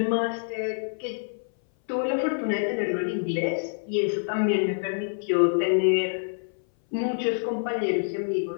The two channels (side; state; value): right; silent; 58 dB below the other